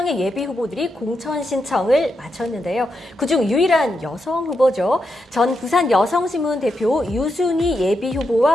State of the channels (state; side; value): normal; both; correlation 0.84